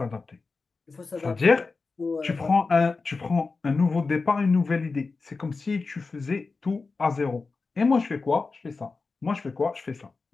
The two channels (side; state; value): right; quieter; 4.1 dB